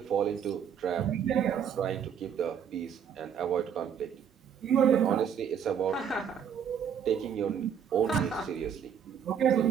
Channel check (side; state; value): left; quieter; 8.0 dB